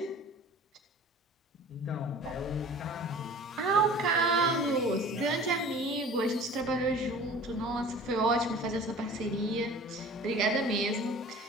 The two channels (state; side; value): normal; both; correlation 0.43